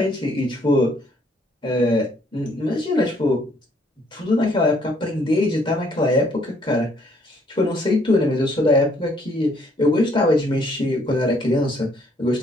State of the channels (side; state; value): both; normal; correlation 0.66